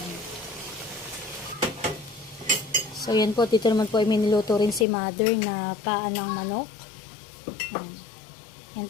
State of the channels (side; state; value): right; drops out; at 4.9 s